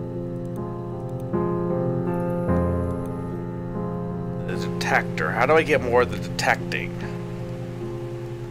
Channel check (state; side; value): identical; both; correlation 1.00